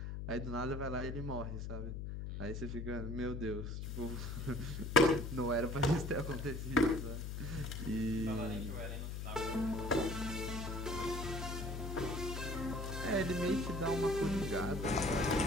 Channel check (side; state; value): left; noise; hum, 5 dB below the sound